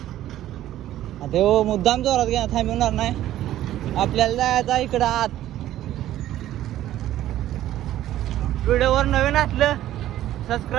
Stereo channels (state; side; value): quieter; left; 13.3 dB